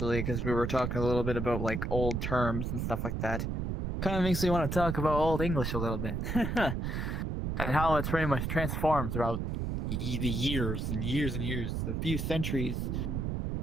because we were talking a little bit about like old terms and stuff like that. Kind of makes me want to talk about Old English a little bit. And how it's pretty much transformed throughout the years and years and years, a few centuries.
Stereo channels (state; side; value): noise; right; rumble, 2 dB below the sound